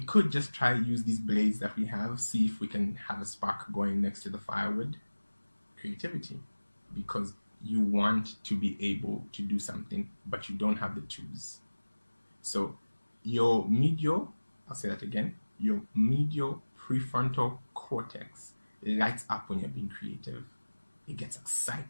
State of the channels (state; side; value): inverted; both; correlation -1.00